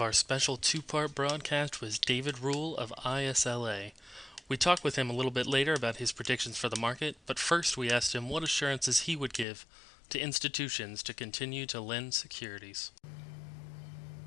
our special two-part broadcast with David Rule of ISLA. We talked with him a little bit later about his predictions for the market, but first we asked him what assurances he would give to institutions to continue to lend securities.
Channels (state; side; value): drops out; right; at 9.5 s